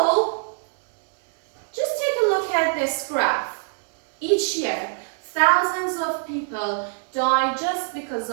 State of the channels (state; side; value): silent; left; digital silence